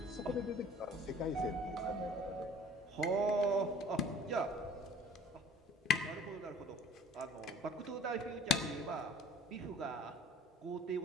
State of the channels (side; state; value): both; normal; correlation 0.48